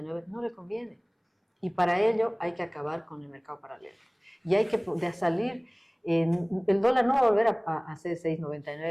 no le conviene. Y para ello hay que acabar con el mercado paralelo. Y hay que salir, el dólar no va a volver a ser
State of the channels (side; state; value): both; identical; correlation 1.00